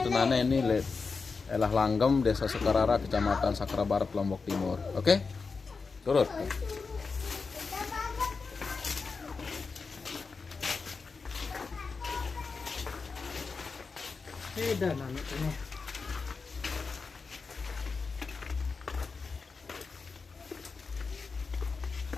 nane ini le elah Langgem, Desa Sekarara, Kecamatan Sakra Barat, Lombok Timur. Oke, turut. Beda nane ini.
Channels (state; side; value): quieter; right; 4.7 dB